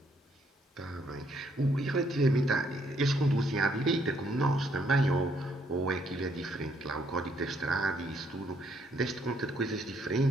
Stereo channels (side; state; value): both; normal; correlation 0.70